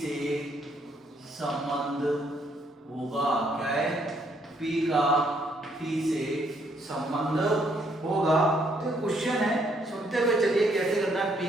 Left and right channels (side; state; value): both; normal; correlation 0.70